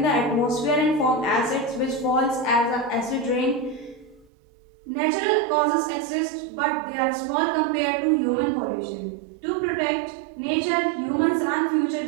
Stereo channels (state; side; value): drops out; left; at 4.2 s